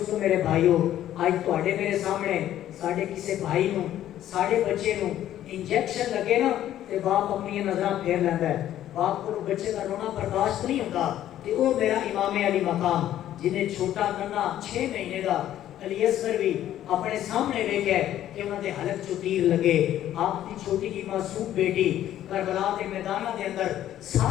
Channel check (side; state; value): right; quieter; 12.1 dB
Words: میرے بھائیو آج تواڈے میرے سامنے ساڈے کسے بھائی نو ساڈے بچے نو انجیکشن لگے نا تے باپ اپنی نظراں پھیر لیندا ہے باپ کو بچے کا رونا برداشت نہیں ہوتا تے او میرا امام علی مقام جنہیں چھوٹا ننا 6 مہینے دا علی اصغر بھی اپنے سامنے ویکھے کہ انہاں دے حلق چو تیر لگے آپ کی چھوٹی کی معصوم بیٹی کربلا کے میدانہ دے اندر